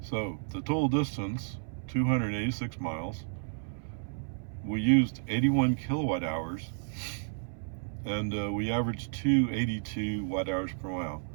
So the total distance, 286 miles. We used 81 kilowatt hours, and we averaged 282 watt hours per mile.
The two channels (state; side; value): silent; left; 57 dB below the other